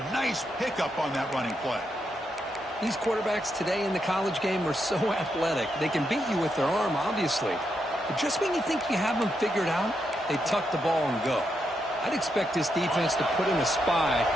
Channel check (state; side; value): normal; both; correlation 0.82